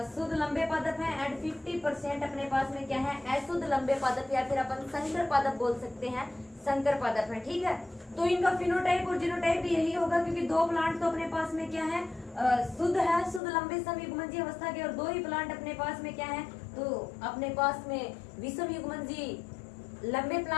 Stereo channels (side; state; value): right; drops out; at 13.4 s